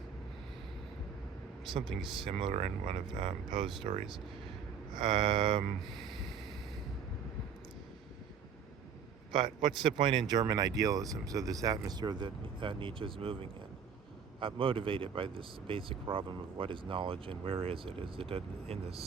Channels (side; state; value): left; quieter; 6.9 dB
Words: something similar in one of Poe's stories. Um, but what's the point in German idealism? So this atmosphere that Nietzsche is moving in, motivated by this basic problem of what is knowledge and where is it? Is it in the